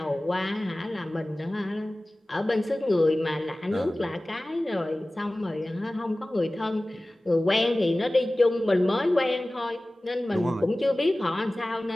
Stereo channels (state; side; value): normal; both; correlation 0.97